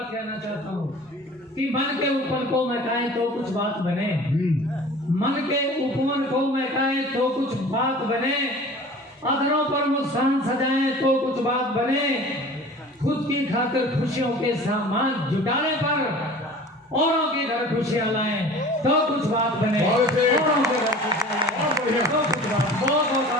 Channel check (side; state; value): both; normal; correlation 0.43